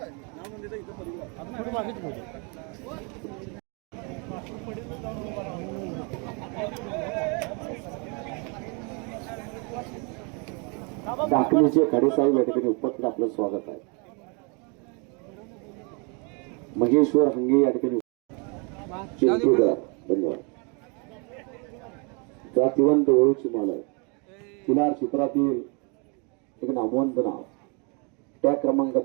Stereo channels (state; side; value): quieter; left; 33.8 dB